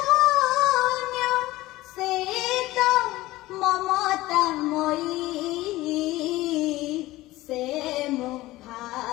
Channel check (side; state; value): right; quieter; 17.8 dB